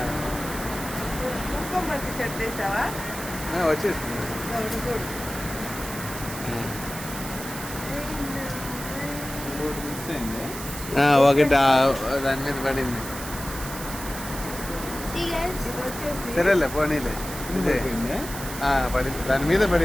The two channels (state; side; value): noise; right; hiss, 10 dB below the sound